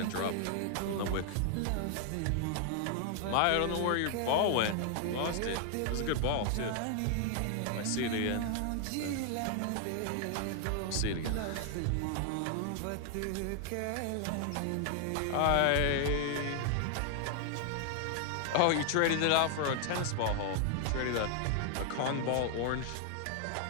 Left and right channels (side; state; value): both; different; correlation 0.00